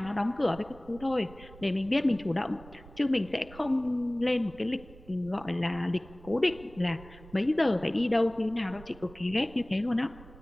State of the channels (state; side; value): noise; right; rumble, 20 dB below the sound